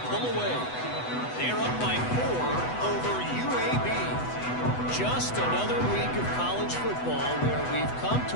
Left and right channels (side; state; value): right; late; 8.0 ms